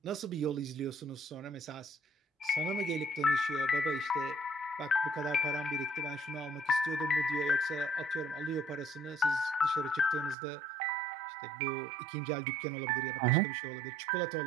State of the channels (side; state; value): left; drops out; at 10.4 s